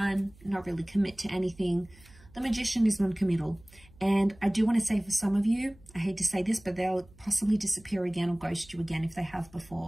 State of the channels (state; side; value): noise; right; hum, 25 dB below the sound